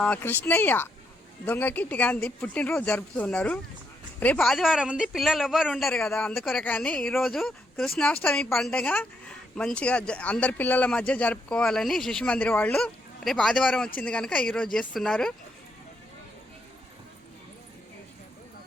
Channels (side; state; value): both; normal; correlation 0.77